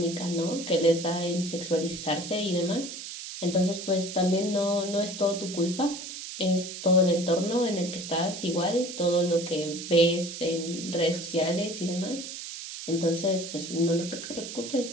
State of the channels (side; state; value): right; noise; hiss, 9 dB below the sound